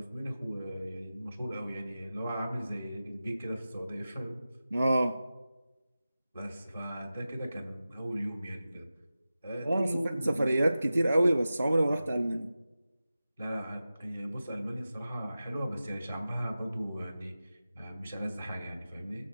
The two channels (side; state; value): both; inverted; correlation -0.94